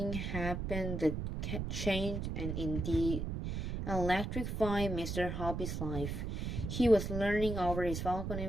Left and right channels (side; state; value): right; noise; rumble, 3 dB below the sound